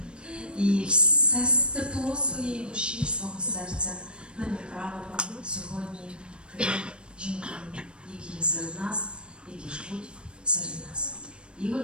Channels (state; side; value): late; left; 0.055 ms